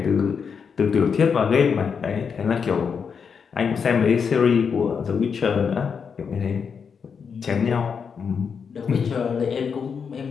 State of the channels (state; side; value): quieter; right; 6.3 dB